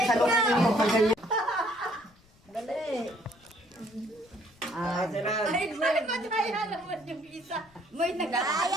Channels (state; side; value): noise; left; rumble, 30 dB below the sound